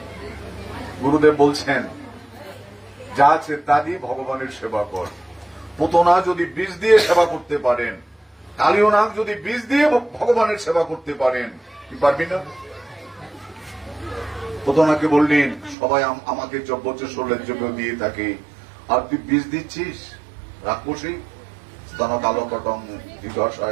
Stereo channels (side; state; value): left; drops out; at 15.8 s